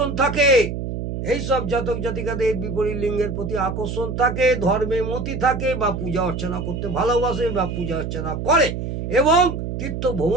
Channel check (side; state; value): right; noise; hum, 5 dB below the sound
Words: থাকে। এইসব জাতক জাতিকাদের বিপরীত লিঙ্গের প্রতি আকর্ষণ থাকে, ধর্মে মতি থাকে বা পূজা অর্চনা করতে ভালোবাসে বা পূজা অর্চনা করে এবং তীর্থ